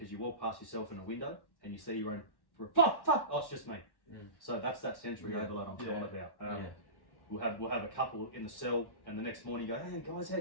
you walk past yourself in a window and you see your own, fuck, oh, it's just me. So that's that sensory overload I'm talking about. We'll have a couple in the cell, and the next morning you go, hey guys,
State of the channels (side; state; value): right; late; 1.1 ms